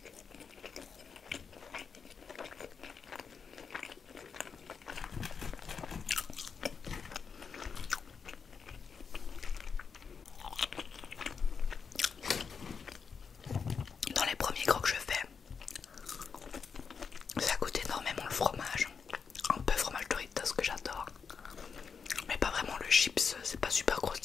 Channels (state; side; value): quieter; right; 6.0 dB